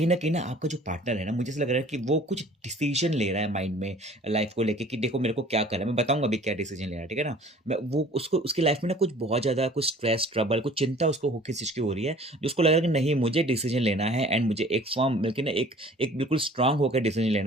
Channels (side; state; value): both; normal; correlation 0.49